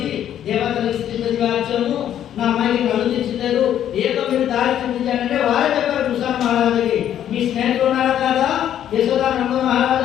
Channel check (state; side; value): quieter; right; 10.6 dB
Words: దేవతలకు స్థితివాచము నా అమ్మాయికి కళ్ళు తెచ్చలేదు, ఏదో మీరు దారి చూపించాలంటే వారే చెప్పారు కృష్ణ మహారాజుకి. మీ స్నేహితులు ఉన్నారా కదా యశోదానంద